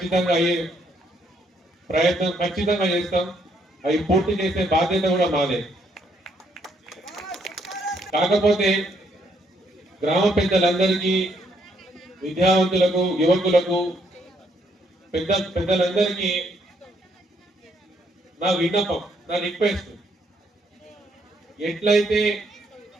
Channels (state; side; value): normal; both; correlation 0.72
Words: అయ్యే ప్రయత్నం ఖచ్చితంగా చేస్తాం. అవి పూర్తి చేసే బాధ్యత కూడా మాదే. కాకపోతే గ్రామ పెద్దలందరికీ, విద్యావంతులకు, యువకులకు, పెద్దలందరికీ నా విన్నపం, నా రిక్వెస్ట్, ఎట్లయితే